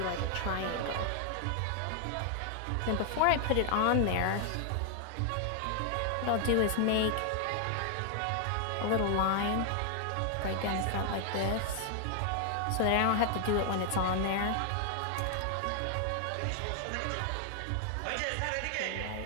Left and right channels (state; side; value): different; both; correlation 0.00